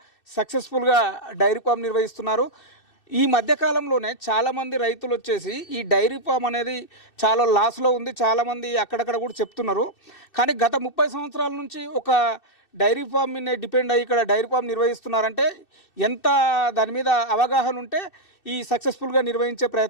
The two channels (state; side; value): late; right; 2.6 ms